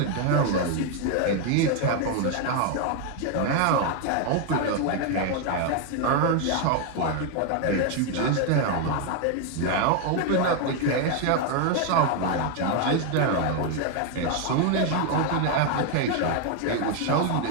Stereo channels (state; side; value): different; both; correlation 0.01